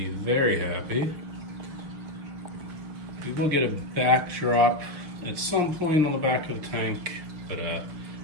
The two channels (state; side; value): late; left; 6.6 ms